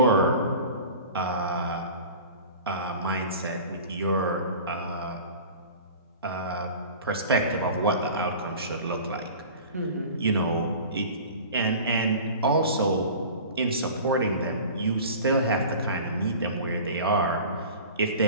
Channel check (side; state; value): both; inverted; correlation -0.39